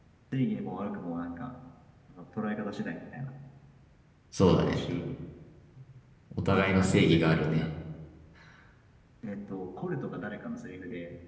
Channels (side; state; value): both; identical; correlation 1.00